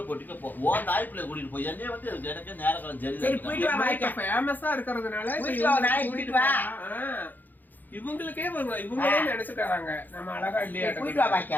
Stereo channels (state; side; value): late; right; 0.086 ms